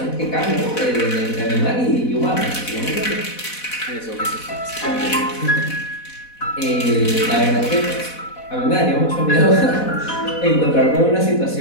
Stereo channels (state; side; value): late; right; 4.1 ms